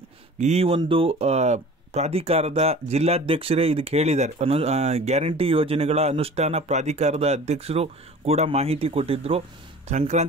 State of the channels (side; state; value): both; normal; correlation 0.42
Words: ಈ ಒಂದು ಪ್ರಾಧಿಕಾರದ ಜಿಲ್ಲಾಧ್ಯಕ್ಷರೇ ಇದಕ್ಕೆ ಹೇಳಿದ್ದಾರೆ. ಗ್ಯಾರಂಟಿ ಯೋಜನೆಗಳ ಅನುಷ್ಠಾನ ಪ್ರಾಧಿಕಾರದ ಅಧ್ಯಕ್ಷರು ಕೂಡ ಮಾಹಿತಿ ಕೊಟ್ಟಿದ್ದರು,